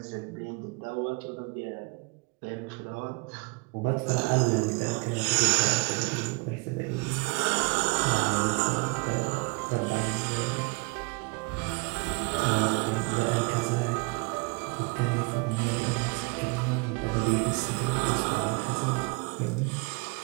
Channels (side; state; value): left; quieter; 28.3 dB